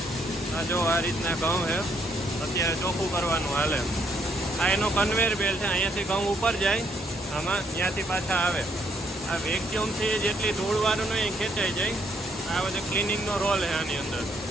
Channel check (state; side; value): normal; both; correlation 0.71